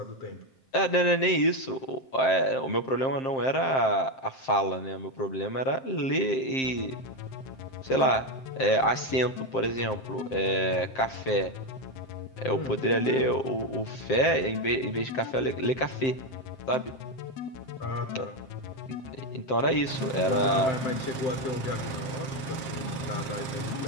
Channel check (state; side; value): late; right; 7.6 ms